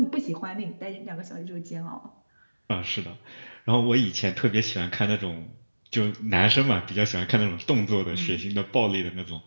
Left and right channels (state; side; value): inverted; both; correlation -1.00